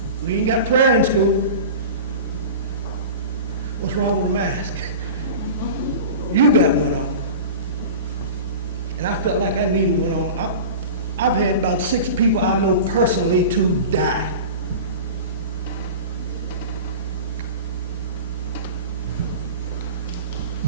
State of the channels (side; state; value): both; inverted; correlation -0.33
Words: We ain't got prayer in school. What's wrong with a mask? You got one on. And I felt like I needed one on. I've had about 6 people I know personally to die.